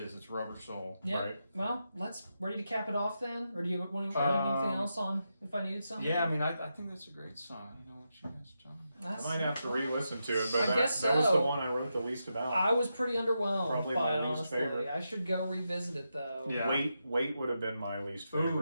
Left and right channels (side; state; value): both; inverted; correlation -0.86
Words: It's Rubber Soul. Yeah. Right. Well, ready to cap it off then? Or do you want to anything else on If I Needed Something? Yeah, I mean, I think that's a great song. You know what you guys, John? I might have to re-listen to it, but I guess that was so. the one I wrote the least about. I was pretty underwhelmed Probably by my it, least honestly. favorite. I should go revisit it though. Yeah. Wait would have been my least